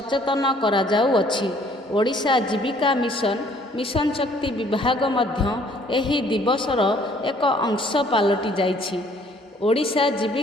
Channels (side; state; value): both; normal; correlation 0.60